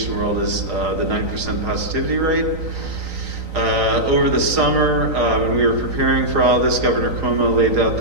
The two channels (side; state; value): left; late; 3.9 ms